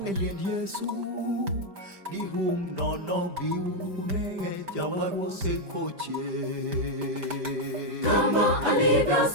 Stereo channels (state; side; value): late; left; 5.1 ms